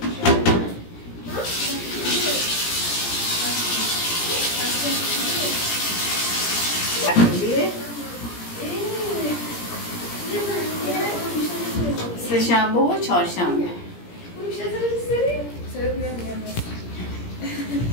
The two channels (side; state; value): right; late; 17 ms